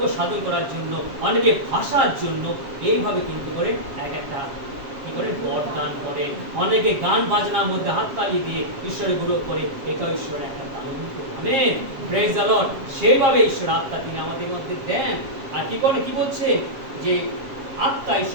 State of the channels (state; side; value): late; left; 7.4 ms